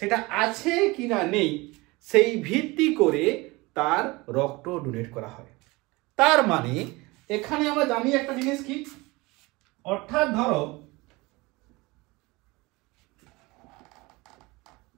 আছে কি না নেই সেই ভিত্তি করে তার রক্ত ডোনেট করা হয়। তার মানে এখানে আমরা জানি একটা জিনিস কি, অর্থাৎ ধরো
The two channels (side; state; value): left; quieter; 23.1 dB